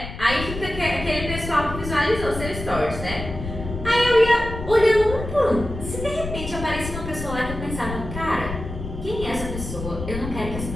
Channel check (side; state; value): left; noise; rumble, 8 dB below the sound